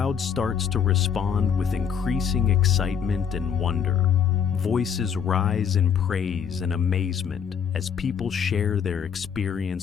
starts to respond with increasing excitement and wonder. Voices rise in praise and amazement as people share their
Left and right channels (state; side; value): quieter; right; 7.4 dB